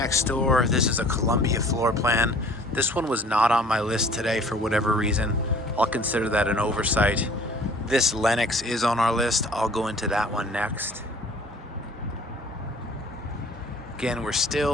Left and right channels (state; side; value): normal; both; correlation 0.51